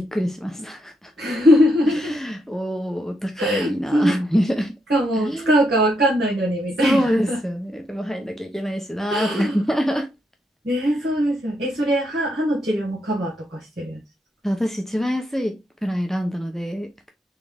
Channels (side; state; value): both; normal; correlation 0.79